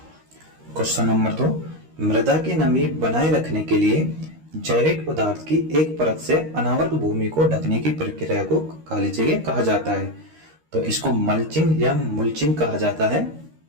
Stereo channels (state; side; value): late; left; 13 ms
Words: क्वेश्चन नंबर 2, मृदा की नमी बनाए रखने के लिए जैविक पदार्थ की एक परत से अनावृत भूमि को ढकने की प्रक्रिया को काली जगह कहा जाता है। तो इसको मल्चिंग या मुल्चिंग कहा जाता है।